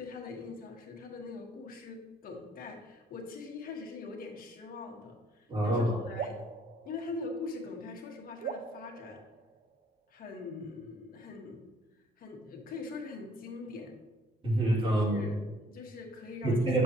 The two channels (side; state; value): both; normal; correlation 0.61